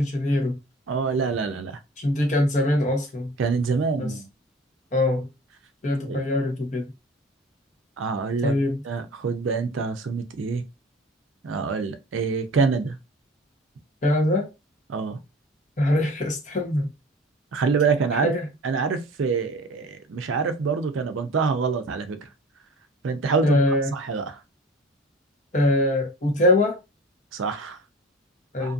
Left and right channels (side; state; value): both; normal; correlation 0.41